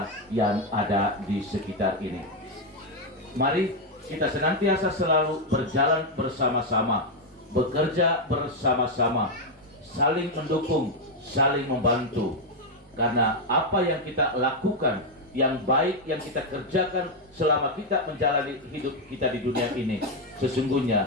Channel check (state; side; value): normal; both; correlation 0.03